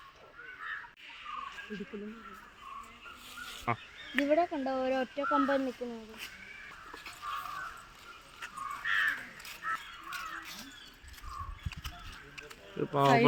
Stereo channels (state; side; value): identical; both; correlation 1.00